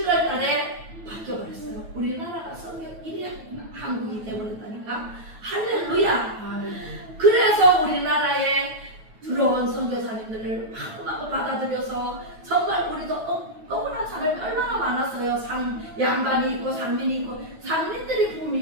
달에 바뀌어버렸어요. 우리나라가 선교 1위 한국이 되어버렸다니까. 할렐루야. 그래서 우리나라에 들어온 선교사님들을 마구마구 받아들여서 정말 우리도 억울한 사람이 얼마나 많았어요. 양반이 있고 상민이 있고, 상민들이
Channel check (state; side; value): late; left; 9.2 ms